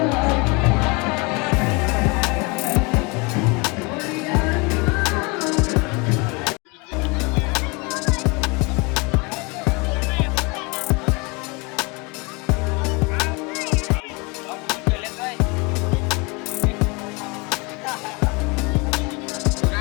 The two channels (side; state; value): right; quieter; 28.8 dB